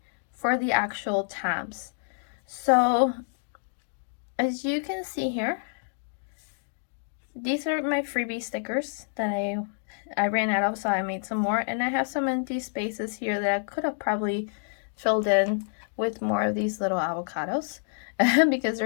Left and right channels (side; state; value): right; silent; digital silence